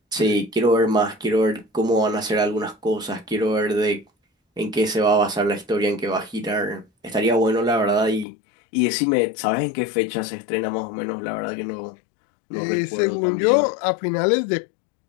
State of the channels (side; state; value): right; drops out; at 8.2 s